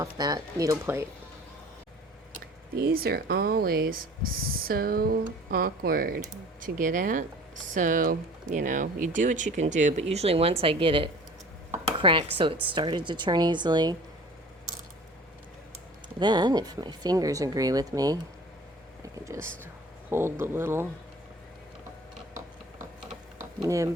that needle plate. These are always so awkward to get at. So, you know, you do what you can do, but usually once I get it cracked so it started to turn easily, then if my fingers agree with me, I can just hold the little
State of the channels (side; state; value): both; normal; correlation 0.45